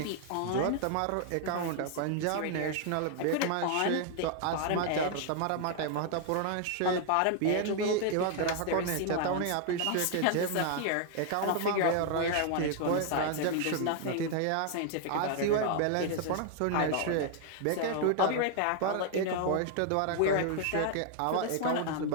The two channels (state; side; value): different; both; correlation 0.00